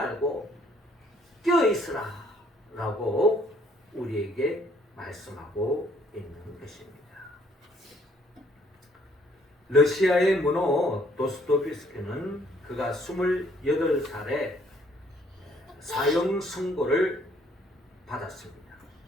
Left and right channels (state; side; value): normal; both; correlation 0.63